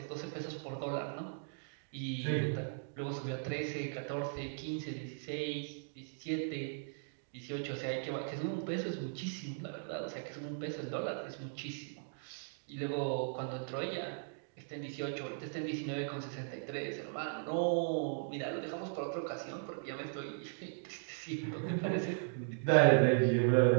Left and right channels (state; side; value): silent; left; digital silence